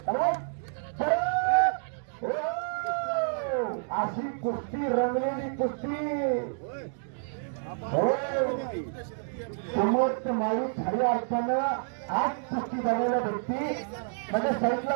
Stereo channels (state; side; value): silent; left; digital silence